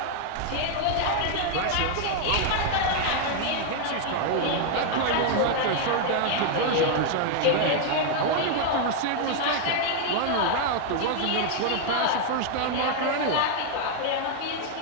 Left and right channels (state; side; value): different; both; correlation 0.00